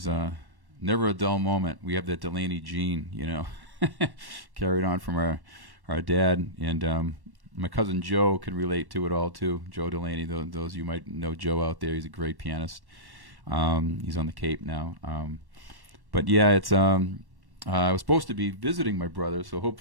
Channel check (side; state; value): left; late; 1.1 ms